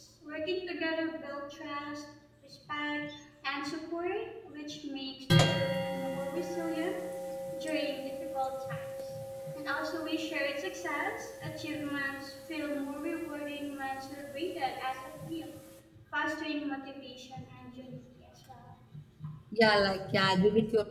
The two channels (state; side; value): identical; both; correlation 1.00